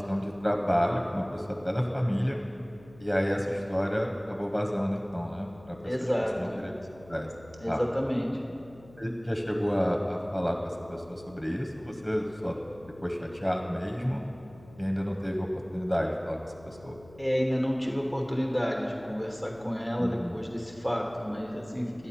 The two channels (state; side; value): noise; left; hum, 22 dB below the sound